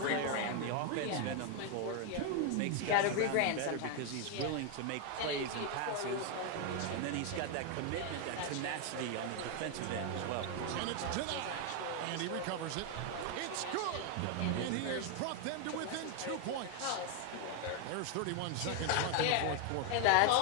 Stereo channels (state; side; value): different; both; correlation 0.01